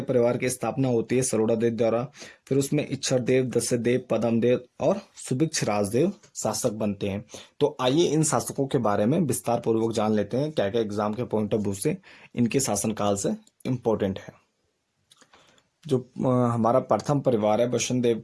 परिवार की स्थापना होती है सरोड़ा देव द्वारा। फिर उसमें इच्छर देव, दस्य देव, पदम देव और सुभिक्ष राजदेव शासक बनते हैं। तो आइए इन शासकों के बारे में विस्तार पूर्वक जान लेते हैं, क्या क्या एग्जाम के पॉइंट ऑफ व्यू से इनके शासनकाल से इम्पोर्टेंट है। जो हमारा प्रथम परिवार है, बसंत देव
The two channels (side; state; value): both; identical; correlation 1.00